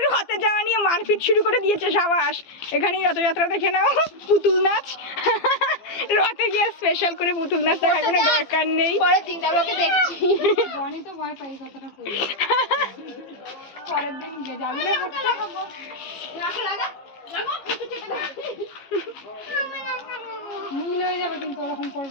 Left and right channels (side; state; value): right; late; 15 ms